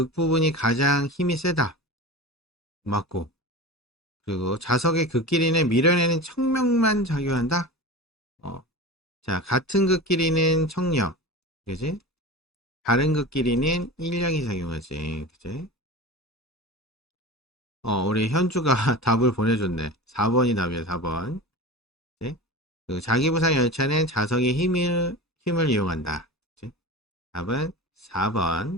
부분이 가장 힘이 세다. 맞고. 그리고 자석의 극끼리는 밀어내는 청력만 작용한다. 어. 자, 같은 극끼리는 청력. 그지? 다른 극끼리는 인력이 작용하지. 그지? 우리 현주가 답을 보내줬네. 4번이 답이야, 4번. 그지? 그 자기부상 열차는 자석의 힘을 이용한다. 그지? 답은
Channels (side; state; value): both; normal; correlation 0.31